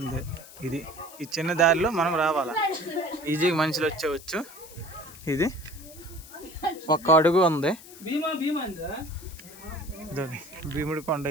ఈ చిన్న దారిలో మనం రావాలా. ఈజీగా మనుషులు వచ్చేవచ్చు. ఇది ఒక్క అడుగు ఉంది. భీముడి కొండ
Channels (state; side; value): noise; left; hiss, 18 dB below the sound